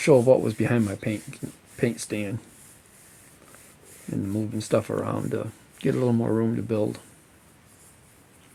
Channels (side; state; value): both; identical; correlation 1.00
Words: what was behind my paint stand and moving stuff around to get a little more room to build.